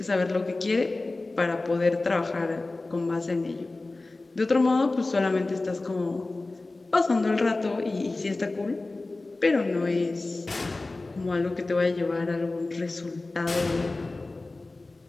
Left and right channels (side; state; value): right; quieter; 3.2 dB